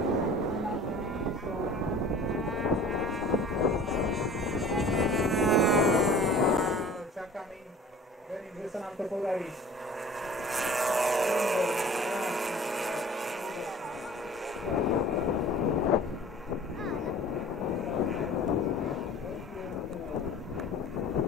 Verím, že sa nám to podarí.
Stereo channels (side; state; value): both; normal; correlation 0.45